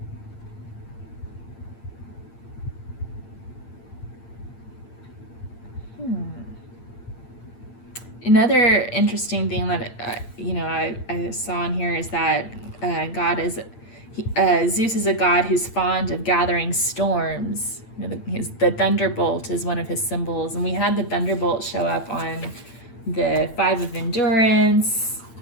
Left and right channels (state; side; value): late; right; 8.8 ms